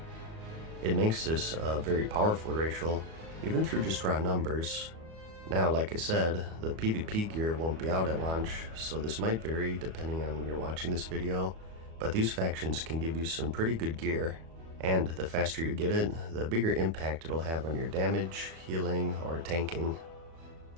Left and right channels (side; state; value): left; late; 36 ms